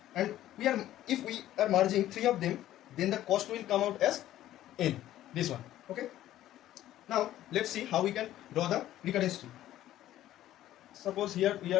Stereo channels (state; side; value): quieter; right; 13.4 dB